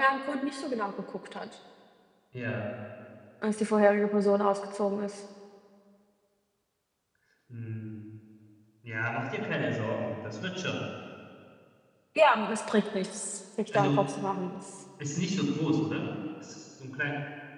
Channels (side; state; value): both; identical; correlation 1.00